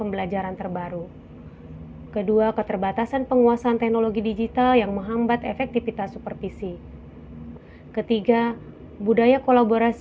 pembelajaran terbaru. Kedua, keterbatasan penguasaan teknologi digital yang menghambat efektivitas supervisi. Ketiga, budaya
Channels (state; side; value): identical; both; correlation 1.00